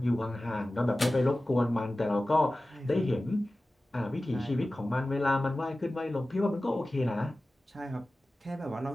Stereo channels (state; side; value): normal; both; correlation 0.96